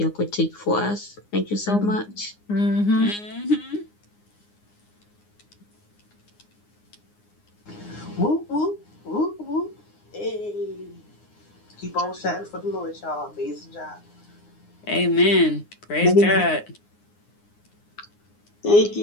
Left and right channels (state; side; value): late; right; 9.7 ms